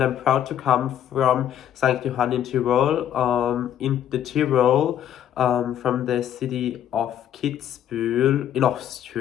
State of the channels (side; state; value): right; quieter; 10.3 dB